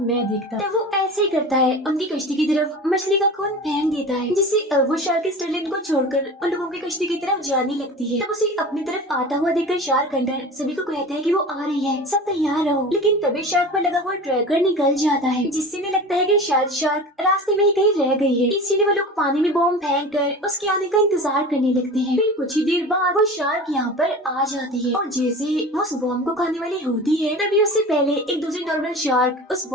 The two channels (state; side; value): normal; both; correlation 0.34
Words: मैं देखता तो वो ऐसे ही करता है, उनकी कश्ती की तरफ मछली का खून फेंक देता है, जिससे अब वो शार्क स्टर्लिन को छोड़कर उन लोगों की कश्ती की तरफ जाने लगती है। तब उसे अपनी तरफ आता हुआ देखकर शार्क हंटर सभी को कहता है कि वो आ रही है, सब तैयार रहो। लेकिन तभी शार्क पर लगा हुआ ट्रैकर निकल जाता है, जिससे इन्हें लगता है कि शायद शार्क रास्ते में ही कहीं रह गई है। इसीलिए वो लोग पानी में बॉम्ब फेंक कर उसके आने का इंतजार करने लगते हैं। फिर कुछ ही देर बाद वो शार्क यहाँ पर आ जाती है और जैसे वो उस बॉम्ब को खाने वाली होती है तभी उससे पहले एक दूसरी नॉर्मल शार्क उस